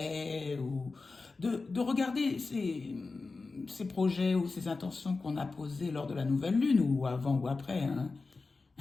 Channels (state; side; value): quieter; right; 3.9 dB